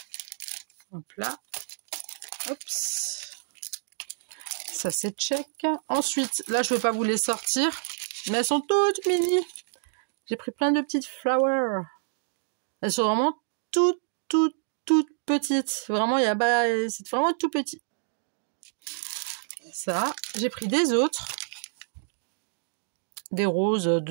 Hop là. Oups. Ça, c'est check. Ensuite, là, je vais pas vous les sortir, mais elles sont toutes mini. J'ai pris plein de petites flowers. Elles sont vraiment toutes petites. Vraiment, il y a pas, c'est vraiment tout petit. Ça, j'ai pris des autres. Des roses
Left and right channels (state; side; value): silent; left; digital silence